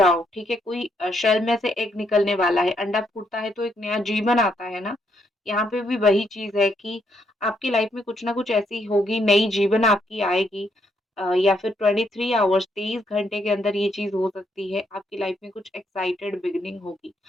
ठीक है। कोई शेल में से एग निकलने वाला है, अंडा फूटता है तो एक नया जीवन आता है ना। यहाँ पे भी वही चीज है कि आपकी लाइफ में कुछ ना कुछ ऐसी होगी, नई जीवन आपकी आएगी, या फिर 23 आवर्स 23 घंटे के अंदर ये चीज हो सकती है। आपकी लाइफ में कुछ एक्साइटेड बिगिनिंग होगी।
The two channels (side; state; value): both; normal; correlation 0.75